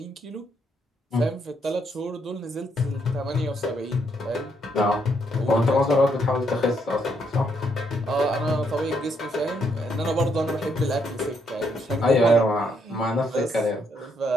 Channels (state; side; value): normal; both; correlation 0.74